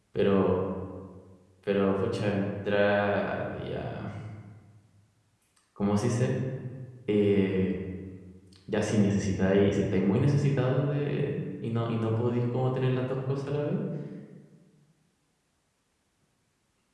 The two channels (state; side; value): identical; both; correlation 1.00